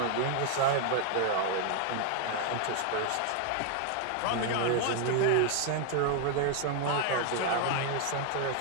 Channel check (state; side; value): different; both; correlation 0.00